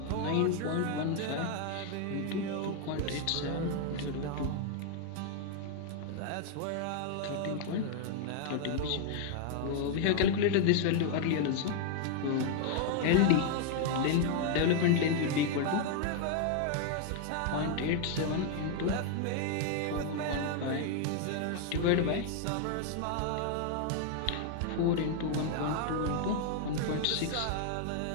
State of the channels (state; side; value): different; both; correlation 0.00